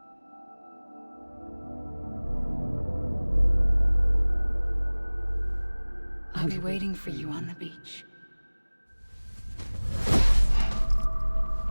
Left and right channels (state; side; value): inverted; both; correlation -1.00